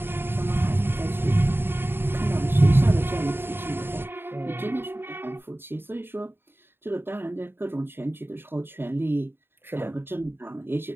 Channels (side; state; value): left; late; 0.11 ms